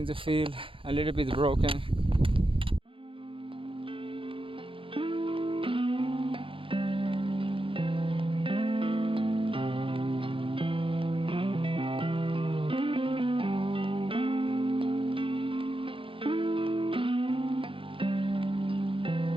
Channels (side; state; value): left; late; 0.25 ms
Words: to feel a little bit broken.